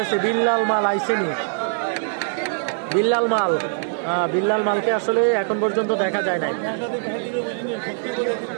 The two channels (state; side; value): silent; left; digital silence